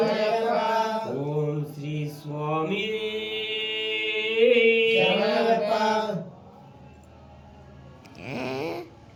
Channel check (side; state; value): both; identical; correlation 1.00